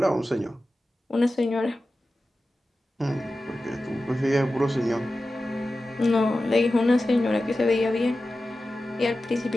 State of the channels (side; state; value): both; normal; correlation 0.94